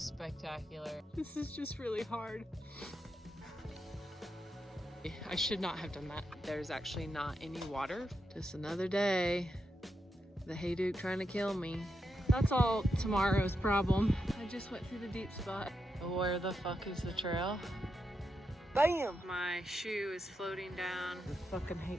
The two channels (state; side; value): normal; both; correlation 0.85